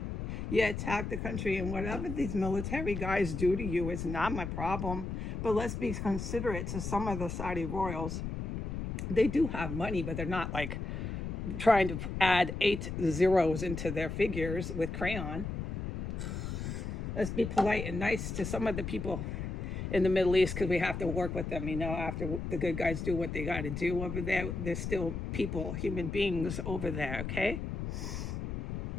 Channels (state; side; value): noise; left; rumble, 5 dB below the sound